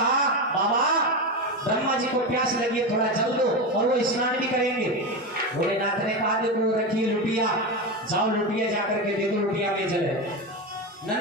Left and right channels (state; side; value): normal; both; correlation 0.17